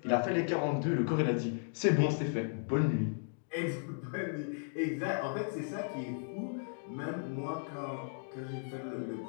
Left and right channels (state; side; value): silent; right; digital silence